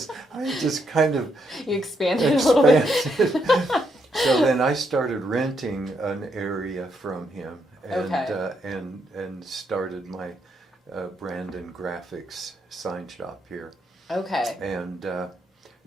I just kind of expanded a little bit. So then I started renting an area from him, and started my Brandon Graphics sign shop here. Okay. And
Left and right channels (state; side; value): normal; both; correlation 0.77